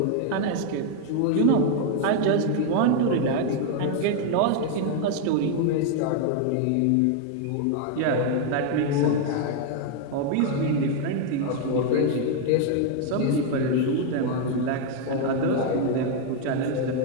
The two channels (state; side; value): different; both; correlation 0.00